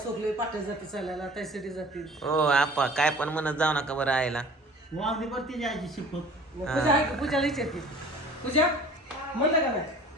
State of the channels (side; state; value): both; normal; correlation 0.46